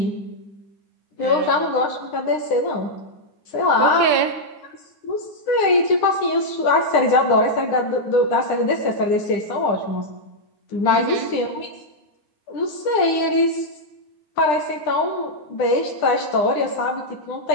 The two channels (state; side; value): late; right; 10 ms